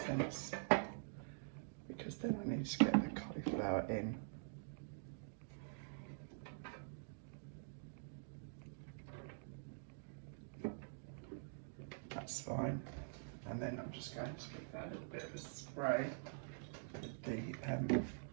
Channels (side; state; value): left; silent; digital silence